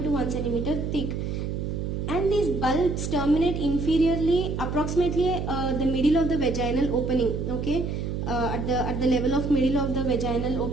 to 1 centimeter thick. And these bulbs terminate inferiorly, approximately the middle of the vaginal opening. Okay, at the level of middle of the vaginal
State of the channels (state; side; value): noise; right; hum, 3 dB below the sound